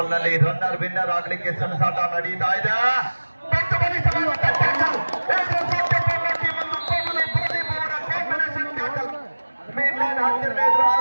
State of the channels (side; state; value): both; inverted; correlation -1.00